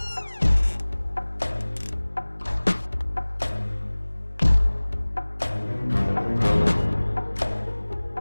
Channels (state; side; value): inverted; both; correlation -1.00